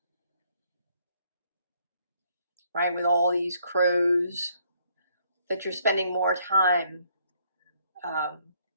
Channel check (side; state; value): both; inverted; correlation -0.68